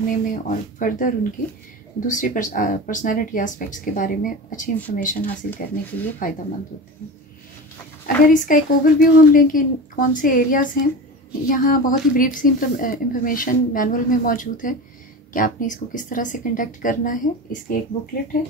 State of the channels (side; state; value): both; normal; correlation 0.29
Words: में और फर्दर उनकी दूसरी पर्सनैलिटी एस्पेक्ट्स के बारे में अच्छी इंफॉर्मेशन हासिल करने के लिए फ़ायदेमंद होते हैं। अगर इसका एक ओवरव्यू हम लें कि कौन से एरियाज़ हैं, यहाँ बहुत ही ब्रीफ सी इंफॉर्मेशन मैनुअल में मौजूद है कि आपने इसको किस तरह से कंडक्ट करना है। इसकी एक बुकलेट है,